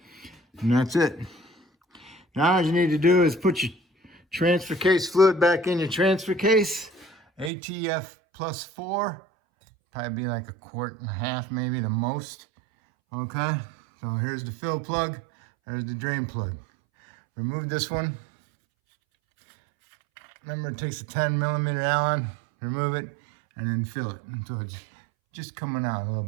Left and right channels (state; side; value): drops out; left; at 7.5 s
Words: And that's it. Now all you need to do is put your transfer case fluid back in your transfer case. ATF plus 4, probably be like 1.5 quarts maybe the most, okay? So here's the fill plug, there's the drain plug. Remove this one. Remember, it takes a 10mm Allen. Remove it and then fill it until it's just coming out a little